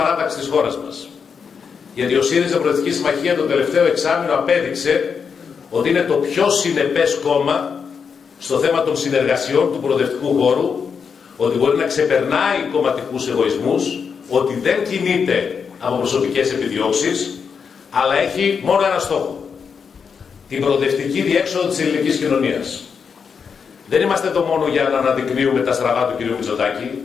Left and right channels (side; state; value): right; quieter; 6.2 dB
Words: της χώρας μας. Γιατί ο ΣΥΡΙΖΑ Προοδευτική Συμμαχία το τελευταίο εξάμηνο απέδειξε ότι είναι το πιο συνεπές κόμμα στο θέμα των συνεργασιών του προοδευτικού χώρου, ότι μπορεί να ξεπερνάει κομματικούς εγωισμούς, ότι δεν κινείται από προσωπικές επιδιώξεις, αλλά έχει μόνο ένα στόχο: την προοδευτική διέξοδο της ελληνικής κοινωνίας. Δεν είμαστε εδώ μόνο για να αναδεικνύουμε τα στραβά του κ. Μητσοτάκη,